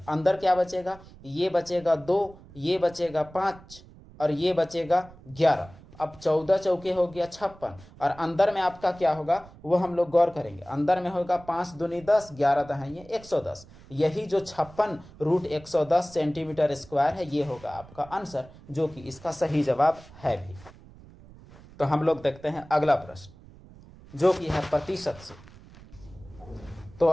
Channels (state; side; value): noise; right; rumble, 21 dB below the sound